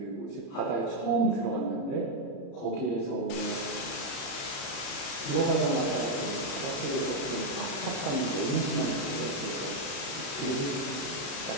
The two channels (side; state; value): right; late; 36 ms